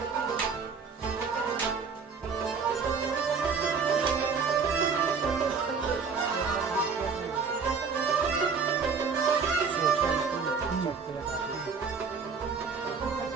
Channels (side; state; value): left; quieter; 5.5 dB